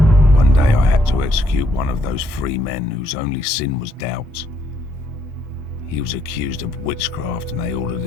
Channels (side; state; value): both; normal; correlation 0.72